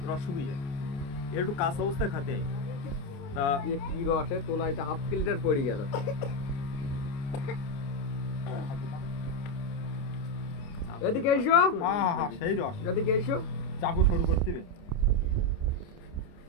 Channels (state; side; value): late; right; 29 ms